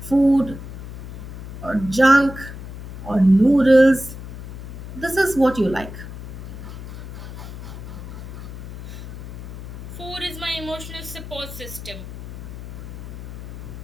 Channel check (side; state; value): left; noise; hum, 10 dB below the sound